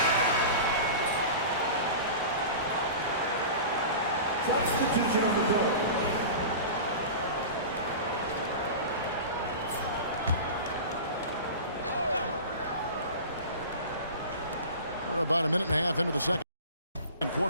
Substitution on the board. We're about a minute and a half into the second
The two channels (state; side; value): inverted; both; correlation -0.33